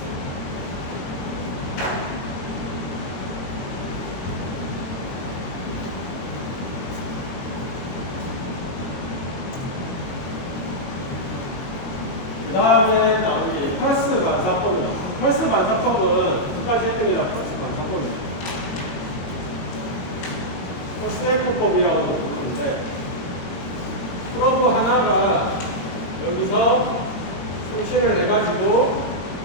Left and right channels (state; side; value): late; right; 22 ms